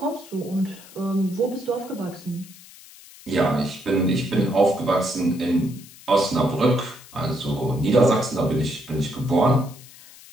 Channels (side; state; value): left; noise; hiss, 20 dB below the sound